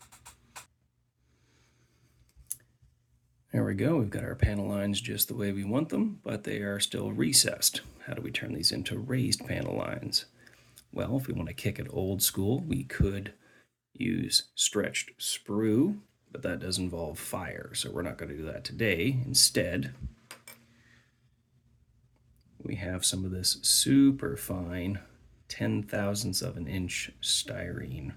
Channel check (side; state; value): both; identical; correlation 1.00